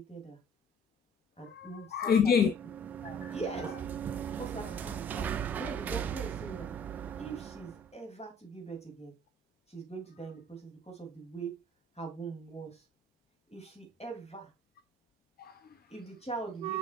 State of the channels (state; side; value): normal; both; correlation 0.53